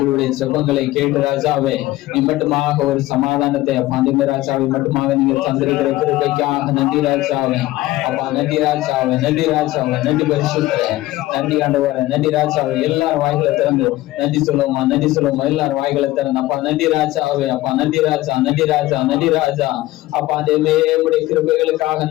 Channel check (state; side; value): quieter; right; 17.0 dB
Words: செபங்களை கேட்டு ராஜாவே நீ மட்டுமாக ஒரு சமாதானத்தை அப்பா தேவ ராஜாவை மட்டுமாக நீங்க தந்திருக்கிற கிருபைக்காக நன்றி ராஜாவே. அப்பா நன்றி ராஜாவே, நன்றி ராஜாவே, நன்றி பரிசுத்தரே, நன்றி ஆண்டவரே, நன்றி ராஜாவே. எல்லாரும் வாய்களை திறந்து நன்றி சொல்லுவோமா, நன்றி சொல்லுவோமா, எல்லாரும் வாய்களை திறந்து அப்பா நன்றி ராஜாவே, அப்பா நன்றி ராஜா, நன்றி ராஜா, நன்றி ராஜா. அப்பா தேவமே உடைய கிருபைகளுக்காக